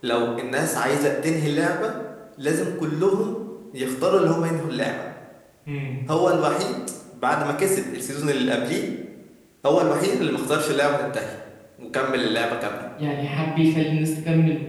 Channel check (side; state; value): both; identical; correlation 1.00